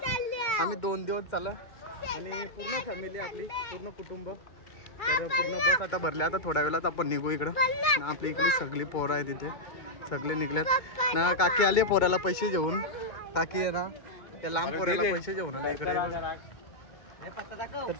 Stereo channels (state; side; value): late; right; 2.3 ms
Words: आम्ही 2 दिवस चाललो आणि पूर्ण फॅमिली आपली, पूर्ण कुटुंब. तर पूर्ण बस आता भरल्या. आता थोड्या वेळात आपण निघू इकडं. आपली इकडली सगळी पोरं आहे तिथे, सगळे निघल्यात ना. काकी आली पोराला पैसे घेऊन. काकी आहे ना, त्या लांब पोराला पैसे घेऊन आला इकडे. तर